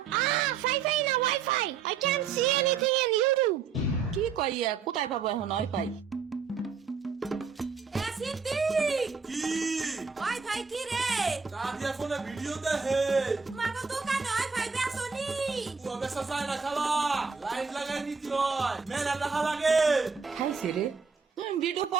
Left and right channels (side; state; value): left; quieter; 5.7 dB